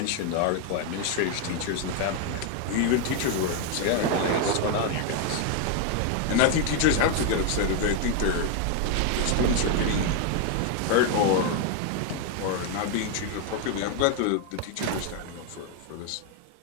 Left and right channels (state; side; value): different; both; correlation 0.01